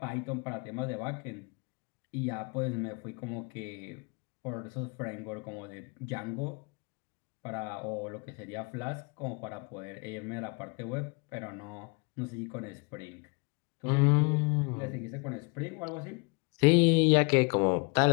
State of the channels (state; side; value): quieter; right; 32.3 dB